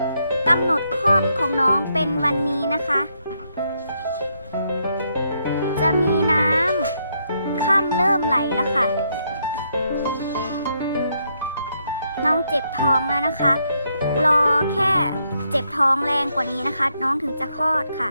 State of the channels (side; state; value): both; inverted; correlation -0.77